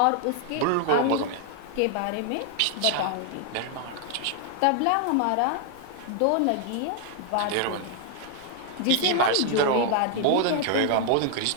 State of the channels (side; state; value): both; different; correlation 0.00